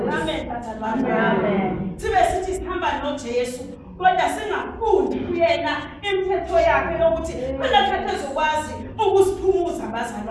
amen bathandi amen sibe sithi sihamba noJesu kodwa singafundi kuyena imithetho yakhe yokuthi kulakhe ezokwazi ukusiphumuza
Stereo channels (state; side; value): identical; both; correlation 1.00